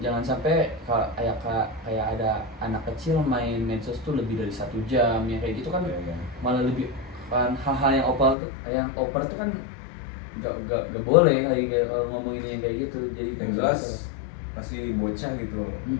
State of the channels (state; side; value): drops out; right; at 8.3 s